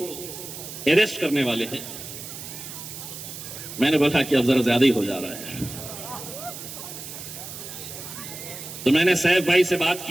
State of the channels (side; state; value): right; noise; hiss, 11 dB below the sound